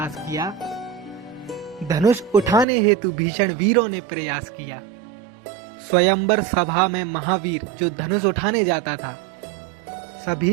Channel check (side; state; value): left; drops out; at 2.7 s